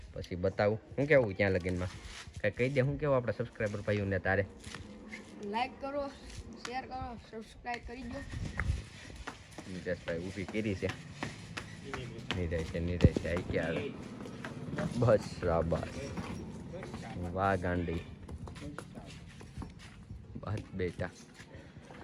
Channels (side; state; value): both; identical; correlation 1.00